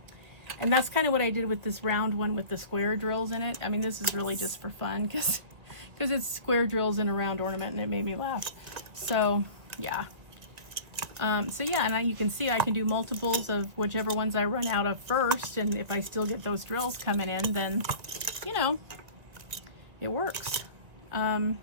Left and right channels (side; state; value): left; late; 1.9 ms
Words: And that's kind of what I did with this round one with the square drills in it. I mean, this is really just for fun because it's square drills in a round ornament, and it made me laugh. So yeah. So yeah, and you can see I can do multiples of whichever ones I run out of first, and if I still get those drills coming in, then, you know, it works.